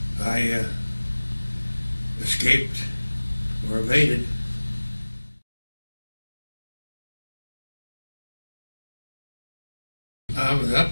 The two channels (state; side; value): inverted; both; correlation -1.00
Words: I escaped or evaded. I was